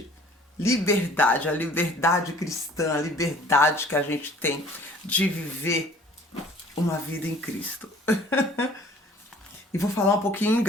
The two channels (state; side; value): normal; both; correlation 0.52